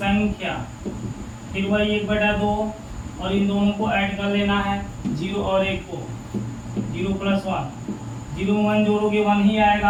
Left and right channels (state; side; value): identical; both; correlation 1.00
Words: फिर वही 1/2 और इन दोनों को ऐड कर लेना है 0 और 1 को, 0 + 1, 0 में 1 जोड़ोगे 1 ही